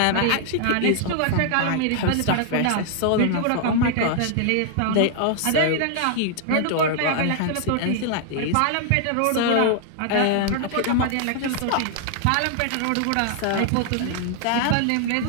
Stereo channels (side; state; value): both; different; correlation -0.01